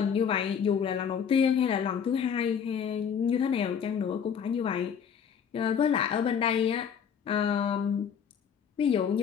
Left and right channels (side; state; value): right; quieter; 7.5 dB